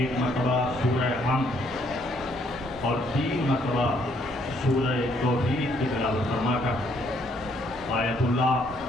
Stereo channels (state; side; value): normal; both; correlation 0.68